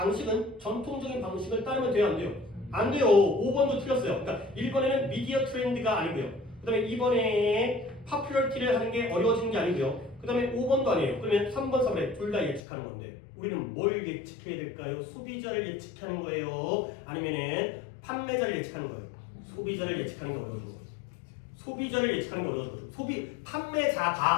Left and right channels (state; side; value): drops out; right; at 12.6 s